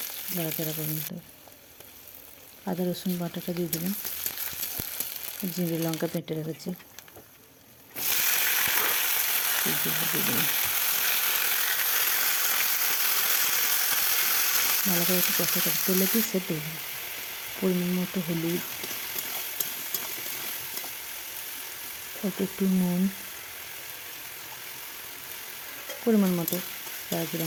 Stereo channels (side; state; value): both; identical; correlation 1.00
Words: নাড়াচাড়া করে নিতে হবে। আদা রসুন বাটাটা দিয়ে দেবেন, জিরে লঙ্কা বেটে রেখেছি দিয়ে দেবেন। ভালো করে একটু কষা করে তেলে দিয়ে সেদ্ধ দেবেন। পরিমাণ মতো হলুদ, অল্প একটু নুন, পরিমাণ মতো যারা